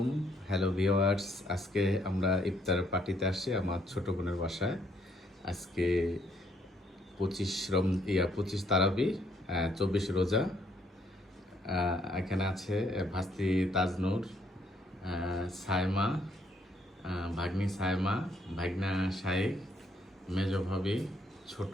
Hello viewers, আজকে আমরা ইফতার পার্টিতে আসছি আমার ছোট বোনের বাসায়। আজকে 25 তারাবি, 24 রোজা। এখানে আছে ভাস্তি তাজনূর, সায়মা, ভাগ্নি সায়মা, ভাগনা শাইখ, মেজ ভাবি, ছোট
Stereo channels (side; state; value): both; normal; correlation 0.69